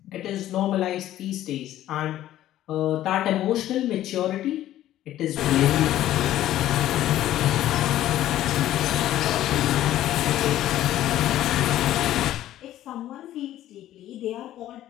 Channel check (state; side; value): quieter; right; 13.3 dB